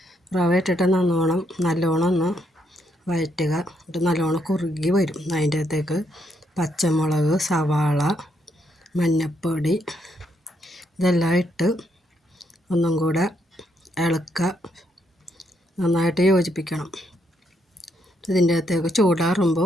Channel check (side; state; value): both; normal; correlation 0.76